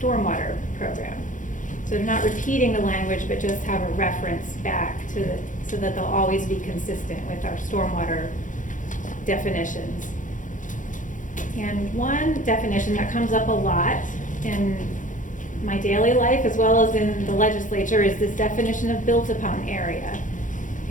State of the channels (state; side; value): late; right; 0.37 ms